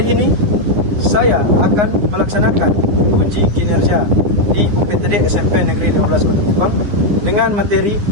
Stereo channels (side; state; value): left; late; 9.8 ms